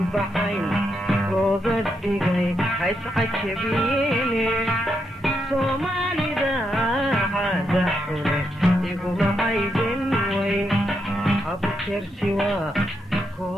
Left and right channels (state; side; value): normal; both; correlation 0.81